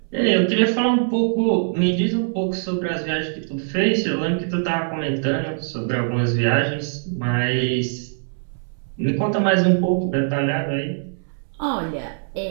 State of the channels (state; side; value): silent; left; 64 dB below the other